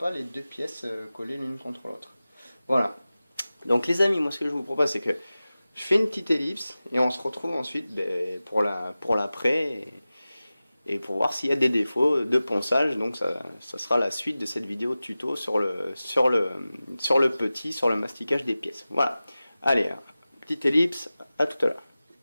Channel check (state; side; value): inverted; both; correlation -0.96